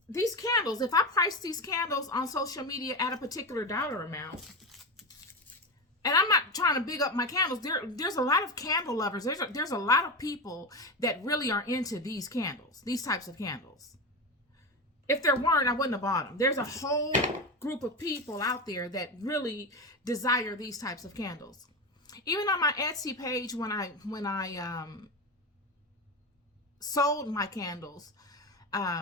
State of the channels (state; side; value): normal; both; correlation 0.20